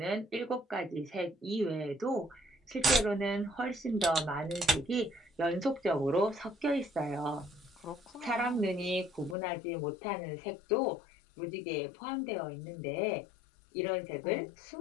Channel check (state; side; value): drops out; right; at 9.3 s